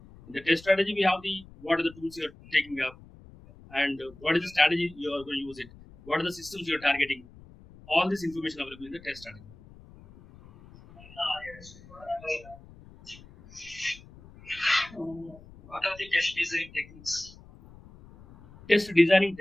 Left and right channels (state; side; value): noise; left; rumble, 21 dB below the sound